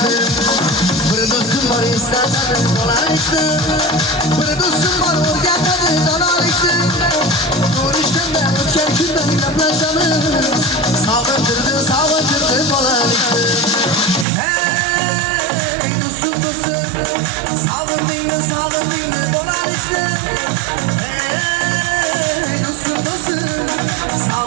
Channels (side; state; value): left; drops out; at 14.2 s